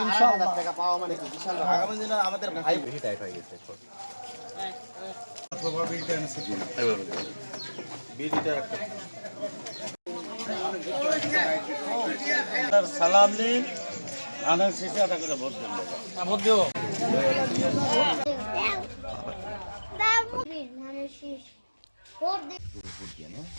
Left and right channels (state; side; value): inverted; both; correlation -1.00